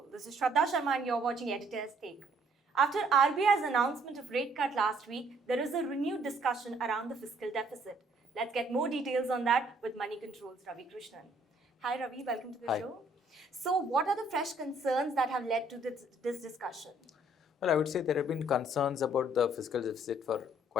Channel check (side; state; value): both; normal; correlation 0.63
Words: This is Shraddha Sharma and you're watching Editor's Take. After RBI's announcement of rate cut last week, there is a renewed discussion around the fiscal deficit. Let's get more details on that with Moneycontrol's Ravi Krishnan. Hi Ravi, welcome to the show. So what are the fresh concerns that have led to this discussion? Well, I would say there have been concerns about the fiscal deficit for